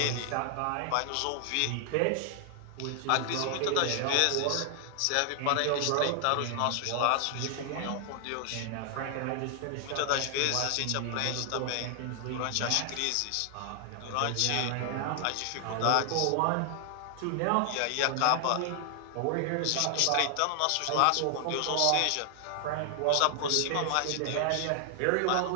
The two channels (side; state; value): both; different; correlation 0.00